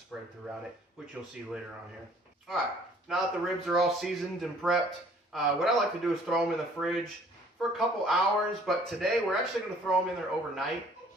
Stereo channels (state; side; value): normal; both; correlation 0.57